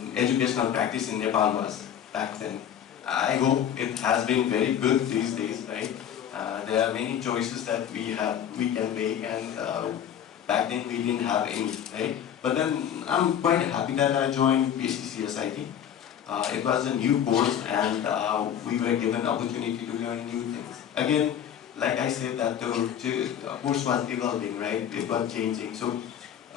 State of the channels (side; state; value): right; quieter; 9.5 dB